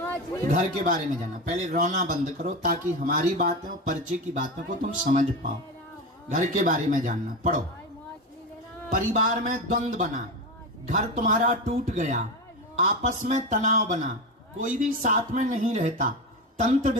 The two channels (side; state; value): both; normal; correlation 0.20